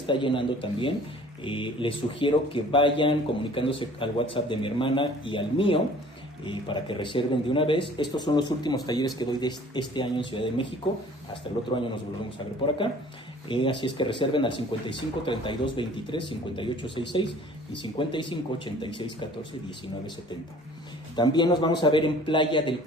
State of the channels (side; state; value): both; normal; correlation 0.50